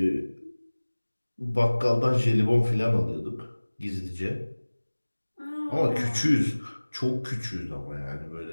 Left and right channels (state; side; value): inverted; both; correlation -1.00